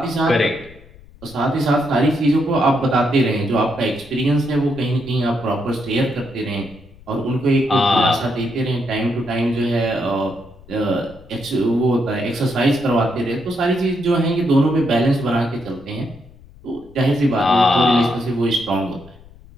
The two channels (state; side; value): noise; left; rumble, 23 dB below the sound